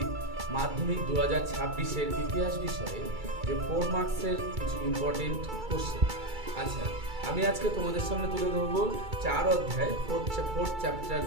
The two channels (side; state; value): left; late; 2.3 ms